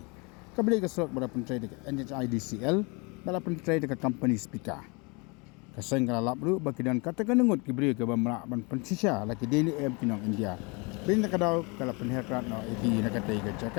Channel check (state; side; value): quieter; right; 29.8 dB